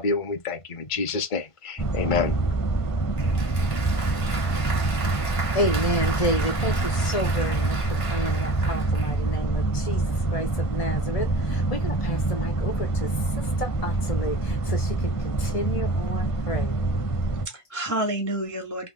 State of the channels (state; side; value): late; right; 1.5 ms